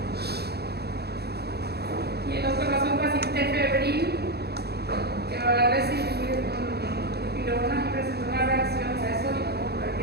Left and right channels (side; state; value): left; late; 0.47 ms